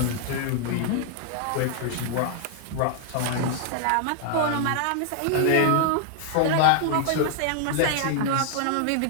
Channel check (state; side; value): different; both; correlation 0.00